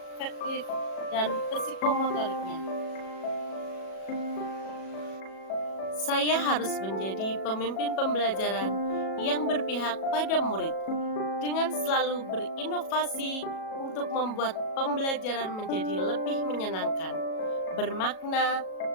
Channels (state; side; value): late; right; 37 ms